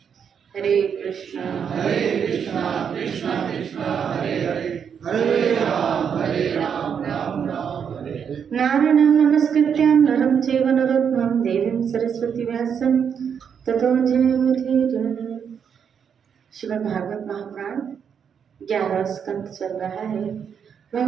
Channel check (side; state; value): left; quieter; 7.4 dB